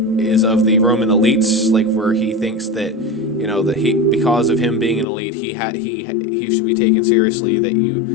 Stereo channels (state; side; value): drops out; right; at 5.1 s